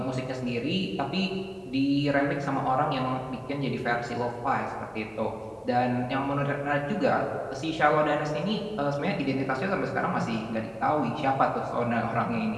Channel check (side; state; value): both; identical; correlation 1.00